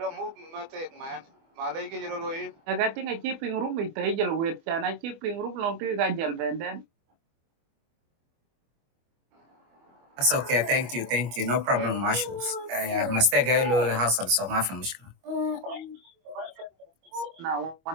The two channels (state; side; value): late; left; 25 ms